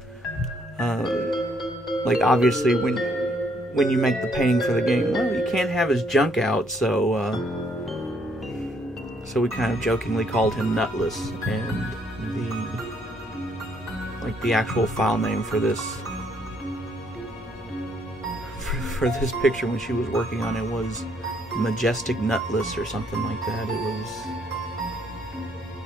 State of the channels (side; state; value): both; normal; correlation 0.69